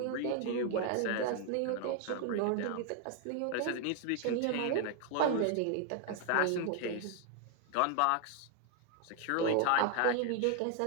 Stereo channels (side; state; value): both; different; correlation 0.00